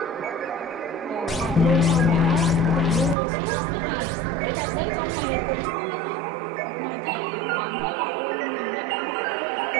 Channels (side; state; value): left; drops out; at 3.2 s